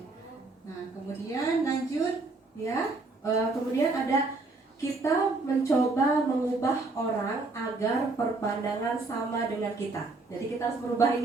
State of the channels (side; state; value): left; quieter; 3.5 dB